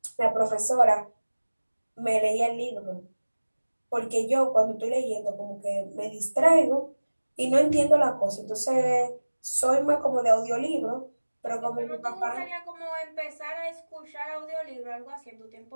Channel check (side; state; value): both; inverted; correlation -1.00